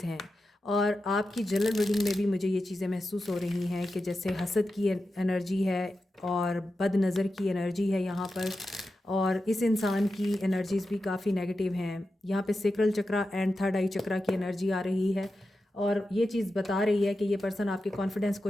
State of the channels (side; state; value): both; normal; correlation 0.91